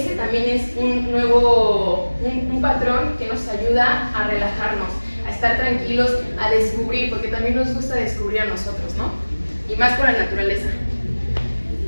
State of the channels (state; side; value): inverted; both; correlation -1.00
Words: también es un patrón que nos ayuda a relajarnos, a estar tranquilos, a descubrir, porque también nos gusta descubrir a nosotros, ¿no? Y más con la naturaleza.